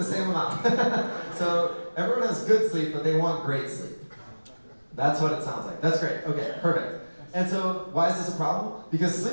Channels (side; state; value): both; inverted; correlation -1.00